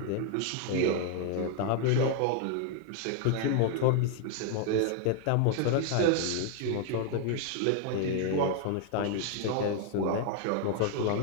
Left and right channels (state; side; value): different; both; correlation 0.00